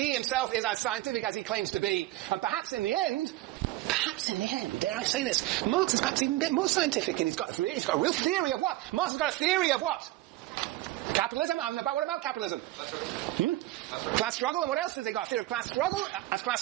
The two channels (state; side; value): quieter; left; 17.2 dB